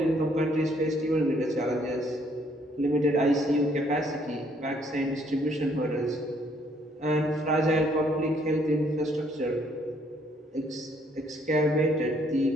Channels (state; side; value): normal; both; correlation 0.66